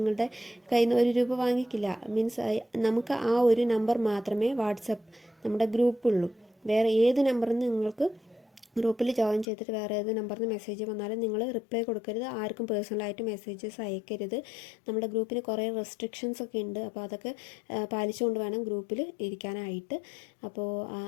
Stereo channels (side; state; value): right; drops out; at 9.5 s